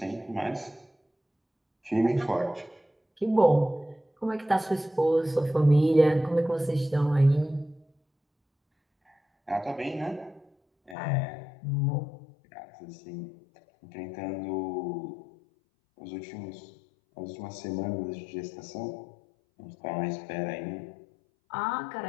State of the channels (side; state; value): right; drops out; at 11.0 s